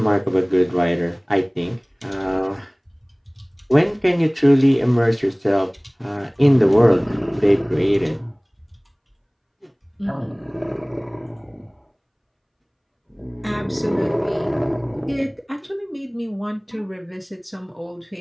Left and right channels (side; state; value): both; identical; correlation 1.00